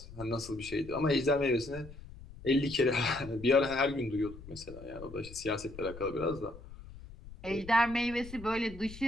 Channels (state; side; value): noise; left; rumble, 16 dB below the sound